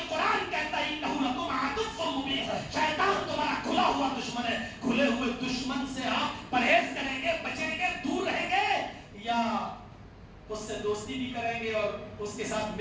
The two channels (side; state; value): both; identical; correlation 1.00